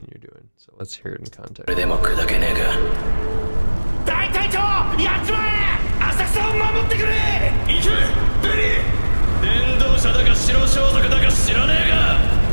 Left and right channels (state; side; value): inverted; both; correlation -1.00